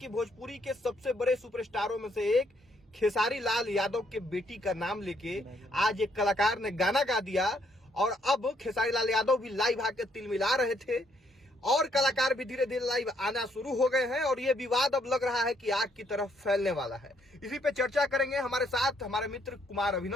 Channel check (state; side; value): normal; both; correlation 0.71